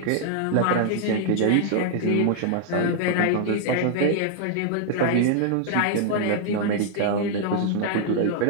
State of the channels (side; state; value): both; different; correlation 0.00